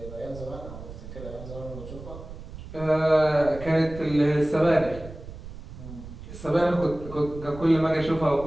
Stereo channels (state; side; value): noise; right; rumble, 13 dB below the sound